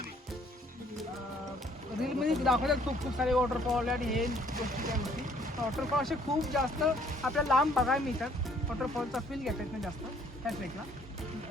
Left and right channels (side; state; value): both; normal; correlation 0.62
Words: रीलमध्ये दाखवतात खूप सारे वॉटरफॉल आणि हे गोष्टी त्या गोष्टी. वॉटरफॉल असे खूप जास्त आपल्याला लांब बघायला मिळतात. वॉटरफॉलचा फील घेता येत नाही जास्त त्या ट्रेकला.